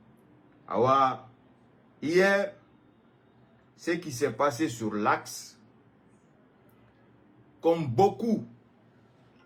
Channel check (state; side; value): identical; both; correlation 1.00